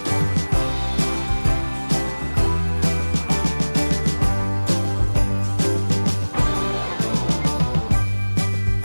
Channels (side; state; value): both; inverted; correlation -1.00